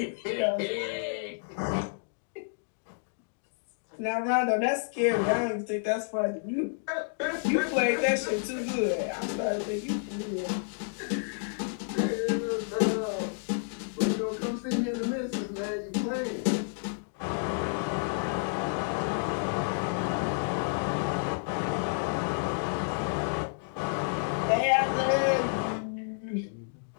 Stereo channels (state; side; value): silent; right; digital silence